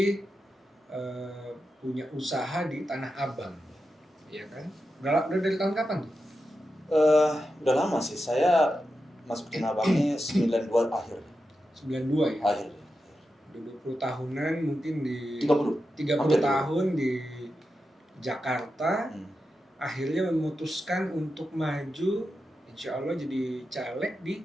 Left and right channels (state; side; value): normal; both; correlation 0.90